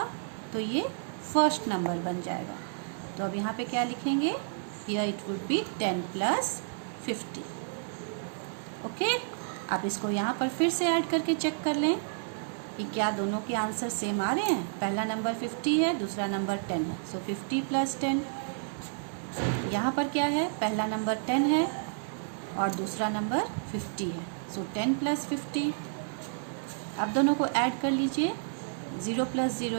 तो ये फर्स्ट नंबर बन जाएगा। तो अब यहाँ पे क्या लिखेंगे, here it would be 10 plus 50. Okay, आप इसको यहाँ पर फिर से ऐड करके चेक कर लें कि क्या दोनों के आंसर सेम आ रहे हैं। पहला नंबर 50 है, दूसरा नंबर 10 है, सो 50 प्लस 10। यहाँ पर क्या है, पहला नंबर 10 है और दूसरा नंबर 50 है, सो 10 प्लस 50। अब दोनों को ऐड कर लीजिए, 0 plus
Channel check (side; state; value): left; silent; 57 dB below the other